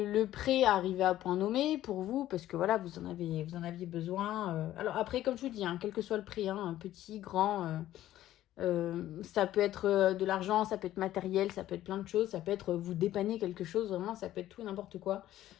prêt arrivait à point nommé pour vous, parce que voilà, vous en aviez besoin. Alors après, comme je vous dis, hein, quel que soit le prix, hein, petit, grand, ça peut être de l'argent, ça peut être matériel, ça peut être plein de choses, ça peut être vous dépanner quelque chose, vraiment, ça peut être tout et n'importe quoi.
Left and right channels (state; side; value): quieter; right; 13.6 dB